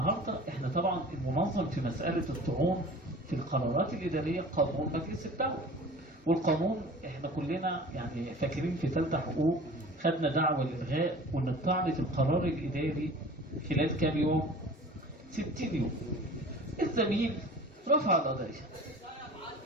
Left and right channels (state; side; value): normal; both; correlation 0.42